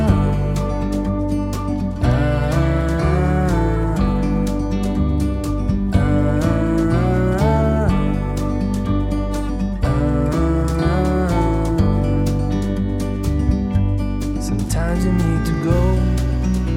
Sometimes you need to go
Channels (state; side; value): identical; both; correlation 1.00